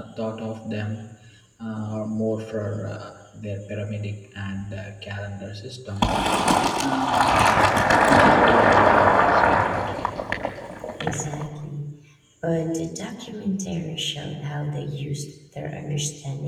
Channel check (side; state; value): both; identical; correlation 1.00